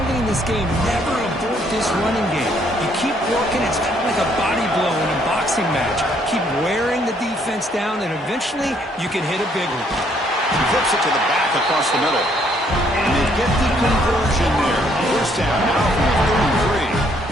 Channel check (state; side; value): normal; both; correlation 0.68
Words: in this game. Never abort this running game. You keep working. It's kind of like a body blow in a boxing match. Keep wearing the defense down, and eventually you can hit a big one. He flips it to the back across the middle. And they get the conversion there. 1st down now from 33.